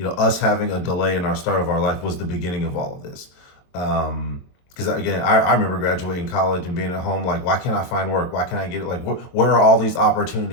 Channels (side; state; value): right; late; 22 ms